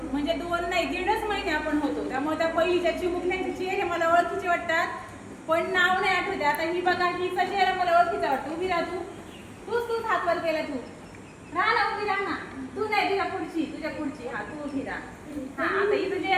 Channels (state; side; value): identical; both; correlation 1.00